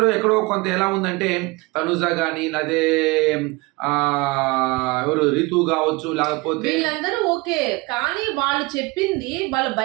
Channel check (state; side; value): quieter; left; 24.3 dB